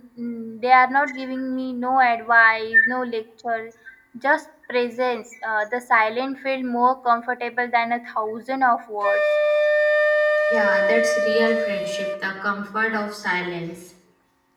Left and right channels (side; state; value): both; identical; correlation 1.00